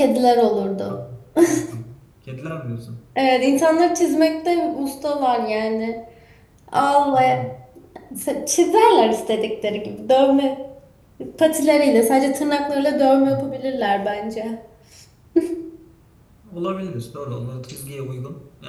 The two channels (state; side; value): identical; both; correlation 1.00